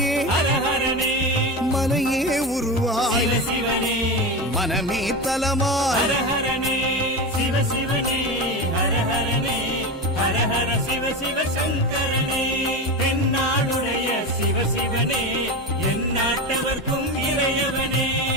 ஹரஹரனே, மனையே உருவாய் சிவசிவனே, மனமே தலமாய். ஹரஹரனே சிவசிவனே, ஹரஹரனே, ஹரஹர சிவ சிவ சங்கரனே, தென்னாடுடைய சிவசிவனே, என் நாட்டவர்க்கும் இறையவனே.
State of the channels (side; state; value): both; normal; correlation 0.21